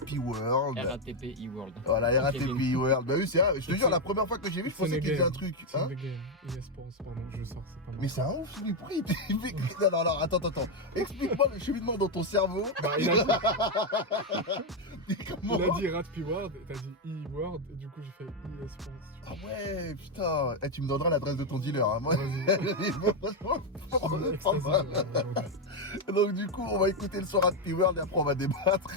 World. RATP E-World. Voilà, RATP E-World. Bah oui, c'est vrai. Je te jure, la première fois que j'ai vu, je pensais qu'il disait un truc. C'est un game. Pardon, je sors, c'est pas mal. Mais c'est un ouf, lui, pourquoi il fait... Non, attends. Explique-moi le cheminement dans ton cerveau. Bah, il a dit Rat P World, et t'as dit E-World, et du coup j'ai fait e-sports. Ah ouais, putain. Tu me donneras l'adresse de ton dealer. Hein. Moi, donc du coup, on va écouter le son Rat P World et après on va débattre.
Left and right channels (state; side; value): normal; both; correlation 0.03